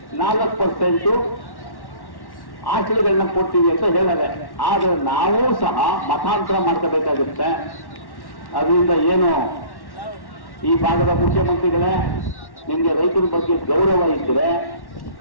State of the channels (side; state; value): right; late; 1.1 ms